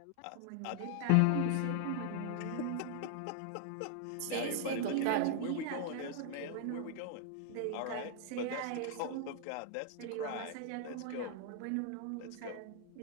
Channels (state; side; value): different; both; correlation 0.00